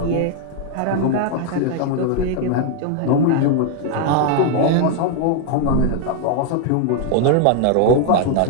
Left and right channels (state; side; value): different; both; correlation 0.00